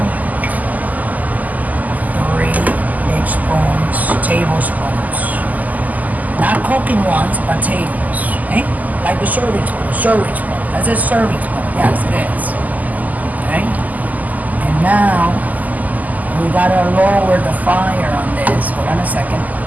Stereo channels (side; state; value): left; late; 0.080 ms